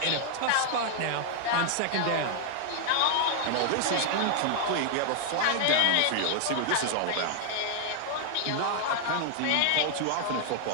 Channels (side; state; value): both; different; correlation 0.00